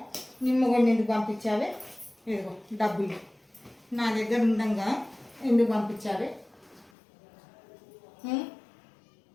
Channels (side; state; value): right; drops out; at 6.9 s